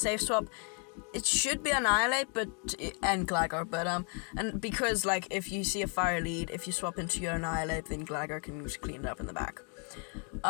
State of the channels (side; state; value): right; quieter; 39.0 dB